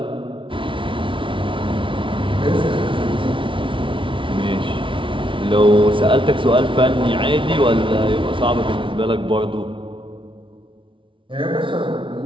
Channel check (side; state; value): left; late; 0.25 ms